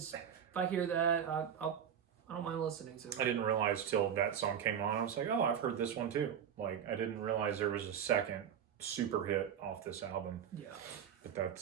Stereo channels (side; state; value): left; quieter; 8.6 dB